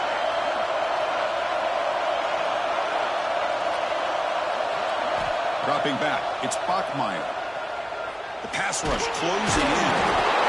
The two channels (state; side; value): identical; both; correlation 1.00